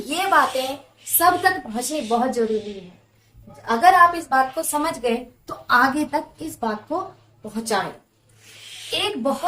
ये बातें सब तक पहुंचनी बहुत जरूरी है। अगर आप इस बात को समझ गए तो आगे तक इस बात को पहुंचाएं। एक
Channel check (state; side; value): identical; both; correlation 1.00